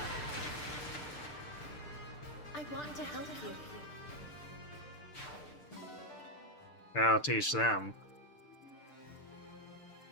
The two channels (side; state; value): right; late; 6.7 ms